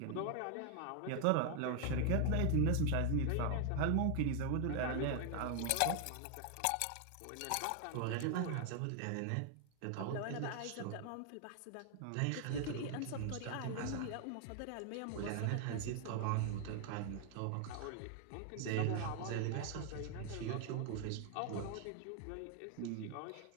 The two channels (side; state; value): both; different; correlation 0.00